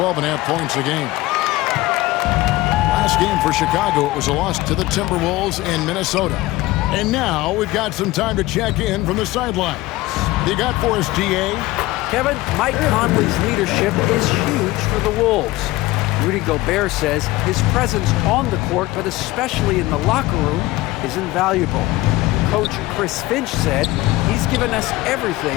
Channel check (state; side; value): quieter; right; 18.5 dB